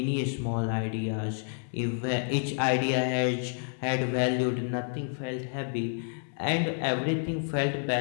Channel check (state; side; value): silent; right; 58 dB below the other